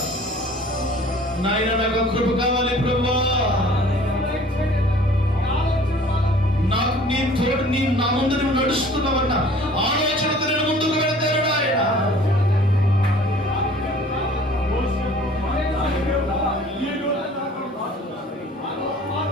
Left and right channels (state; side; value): normal; both; correlation 0.50